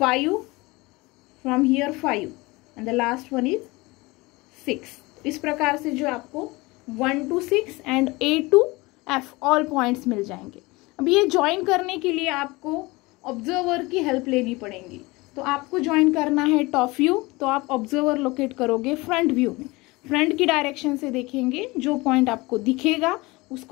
from here 5 and the last one is 6। इस प्रकार से जो आपको 1 to 6 and A to F all points मिल जाएंगे। अब ये ज्वाइन करने के लिए आपको ऑब्जर्वर की हेल्प लेनी पड़ेगी। तो आपको ज्वाइन करना है टॉप व्यू, तो आप ऑब्जर्वर लोकेट करोगे फ्रंट व्यू में। फ्रंट की डायरेक्शन से देखेंगे, जो पॉइंट आपको दिखेगा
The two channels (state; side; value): quieter; right; 23.0 dB